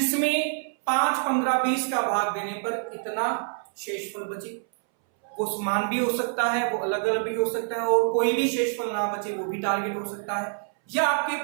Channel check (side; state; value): left; silent; 61 dB below the other